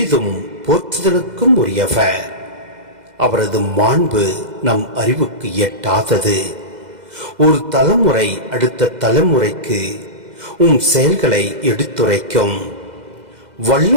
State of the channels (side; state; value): left; late; 2.0 ms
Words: போற்றுதலுக்கும் உரியவர். அவரது மாண்பு நம் அறிவுக்கு எட்டாதது. ஒரு தலைமுறை அடுத்த தலைமுறைக்கு செயல்களை எடுத்துரைக்கும்.